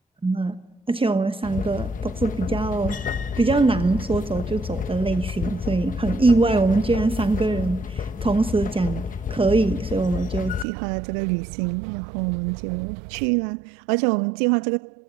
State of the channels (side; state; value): left; drops out; at 10.7 s